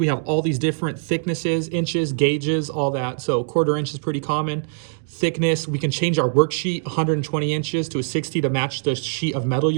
have all these different thicknesses, inches, gauges, all that. So 1/4 inch is pretty common. Thickness, we can change our worksheet 120 inches to a 60 to match the sheet of metal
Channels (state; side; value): silent; left; digital silence